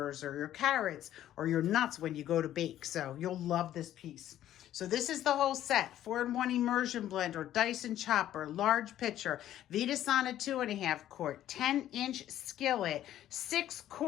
or your carrots or your nuts when you go to bake. So you'll love this piece. So this is the whole set: 4-in-1 Immersion Blender, Dyson chopper, large pitcher, Vida Sana 2.5 quart, 10-inch skillet, 6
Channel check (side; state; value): right; quieter; 12.3 dB